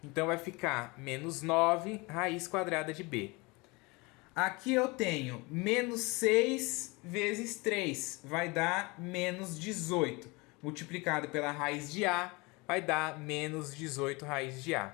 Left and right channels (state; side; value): quieter; right; 25.9 dB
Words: Então vai ficar menos 9 raiz quadrada de b. Aqui eu tenho menos 6 vezes 3. Vai dar menos 18. Multiplicado pela raiz de a, vai dar menos 18 raiz de